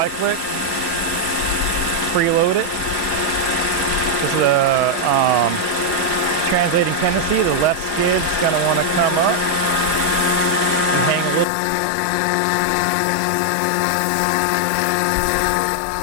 Preload it. This is a translating tendency. The left skid's going to want to come up and hang a little bit low. There's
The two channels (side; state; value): right; drops out; at 11.5 s